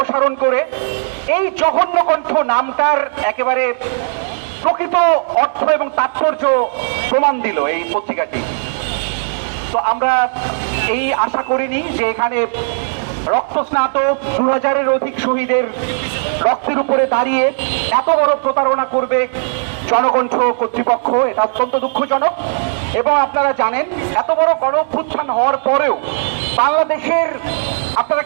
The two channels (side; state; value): left; silent; digital silence